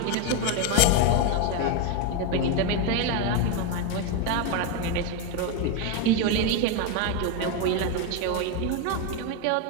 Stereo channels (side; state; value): both; different; correlation 0.02